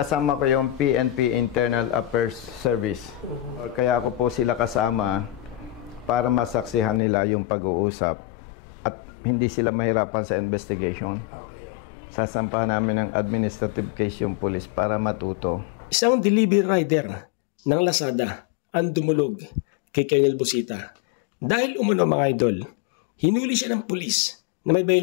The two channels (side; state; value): right; drops out; at 7.0 s